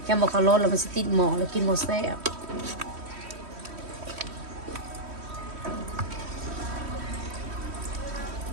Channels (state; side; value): late; left; 3.1 ms